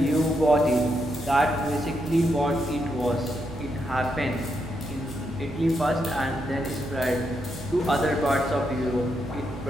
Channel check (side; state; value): both; normal; correlation 0.81